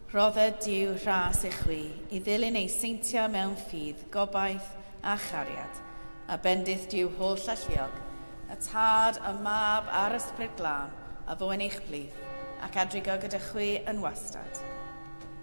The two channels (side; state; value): both; inverted; correlation -1.00